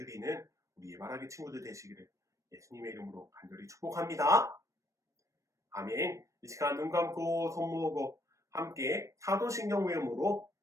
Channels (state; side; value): late; left; 0.15 ms